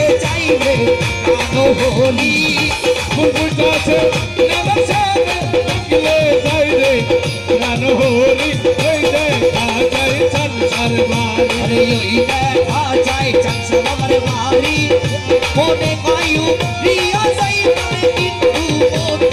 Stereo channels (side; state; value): both; identical; correlation 1.00